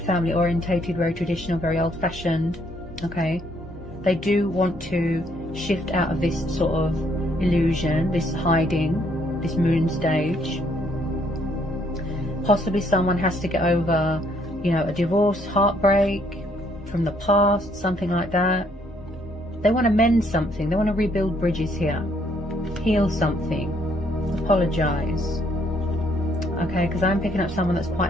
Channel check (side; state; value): both; normal; correlation 0.68